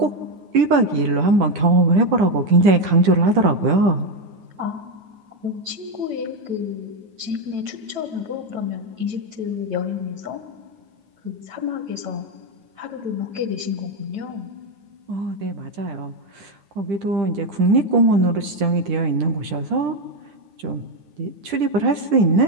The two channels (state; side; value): late; left; 10 ms